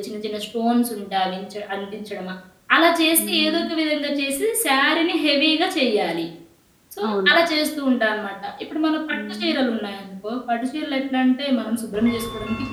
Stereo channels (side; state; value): both; identical; correlation 1.00